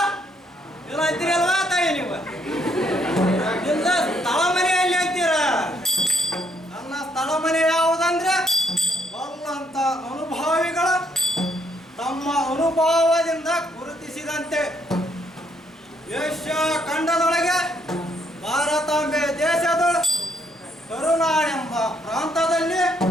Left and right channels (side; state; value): both; normal; correlation 0.72